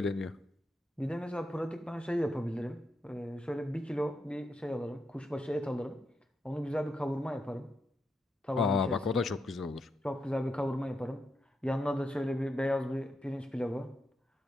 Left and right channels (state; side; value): normal; both; correlation 0.84